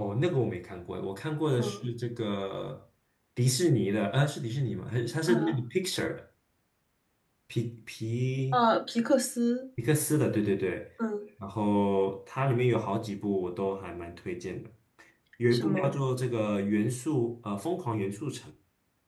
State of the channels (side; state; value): both; identical; correlation 1.00